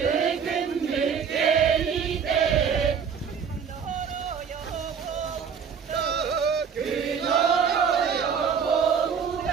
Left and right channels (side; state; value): left; quieter; 6.8 dB